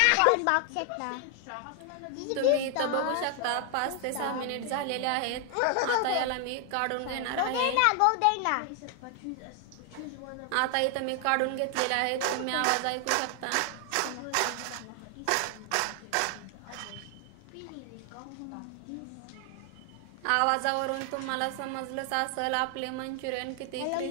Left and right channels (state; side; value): different; both; correlation 0.00